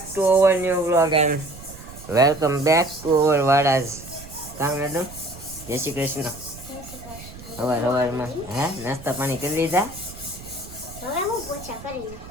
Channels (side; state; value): right; noise; rumble, 16 dB below the sound